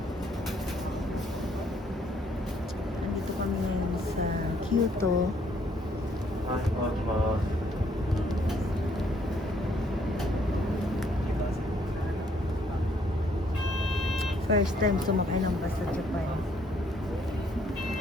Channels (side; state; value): both; normal; correlation 0.66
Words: Nandito kami ngayon sa Kyoto. First time sumakay ng bus sa Japan.